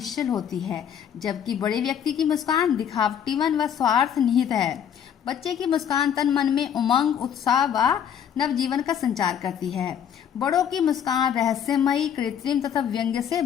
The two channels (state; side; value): quieter; right; 8.8 dB